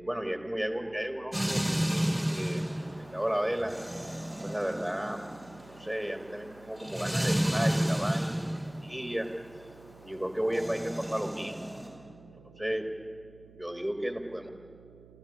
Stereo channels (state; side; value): noise; right; hum, 22 dB below the sound